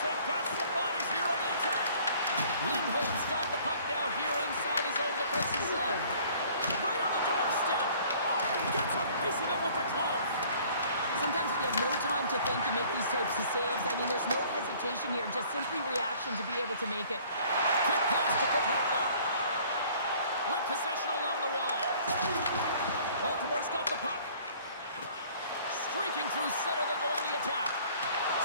got some bodies here on the attack. Lindholm's got the puck now here inside his own defensive zone. Right on the doorstep. Oh, gets a piece of it with the glove. Sometimes you have no time to think to make these types of saves. I mean, there's no hesitation here, just simply reaction to be able to make it. Quick pass to Carpenter. With possession along the wall. Baltimore's got the puck. Streaking through center, they go on the attack.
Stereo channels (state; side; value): inverted; both; correlation -0.54